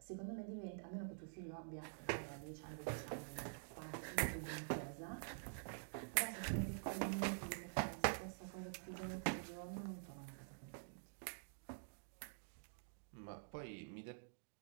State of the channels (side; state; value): left; silent; digital silence